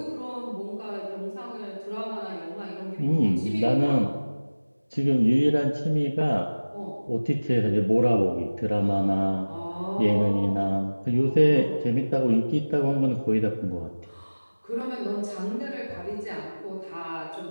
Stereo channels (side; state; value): both; inverted; correlation -1.00